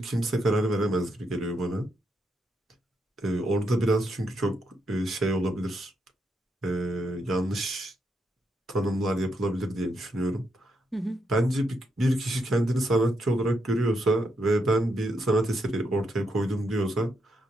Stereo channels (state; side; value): normal; both; correlation 0.80